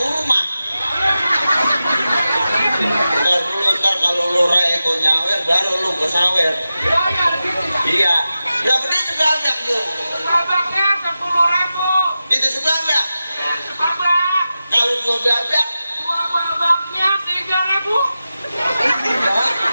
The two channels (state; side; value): inverted; both; correlation -0.93